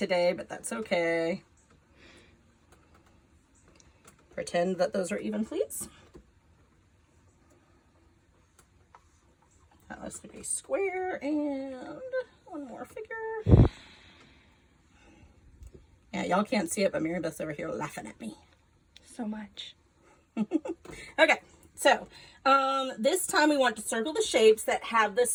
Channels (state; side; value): identical; both; correlation 1.00